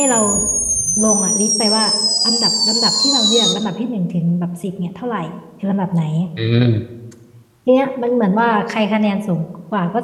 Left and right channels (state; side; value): identical; both; correlation 1.00